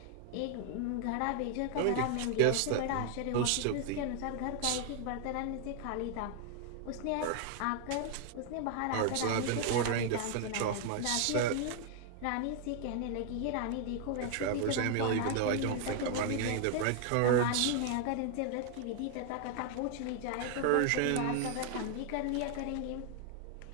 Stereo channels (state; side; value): different; both; correlation 0.00